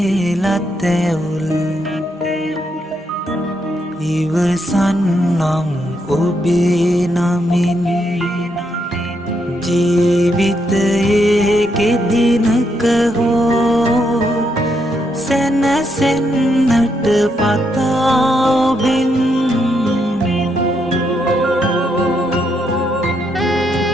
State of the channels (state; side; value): normal; both; correlation 0.78